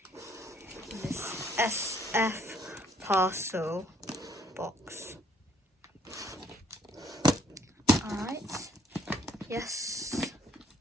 This SF parcel box. Alright. Yes.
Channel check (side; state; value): both; normal; correlation 0.65